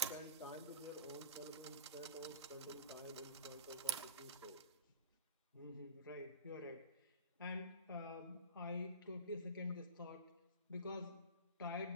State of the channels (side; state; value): both; inverted; correlation -0.38